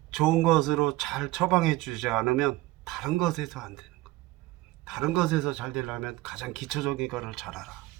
좋은 것으로 잘 처방해 주지 않으면 다른 것에서 안 되는 거. 다른 것에서 잘 되려면 가장 기초적인 거를 잘 알아.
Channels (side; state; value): left; quieter; 18.8 dB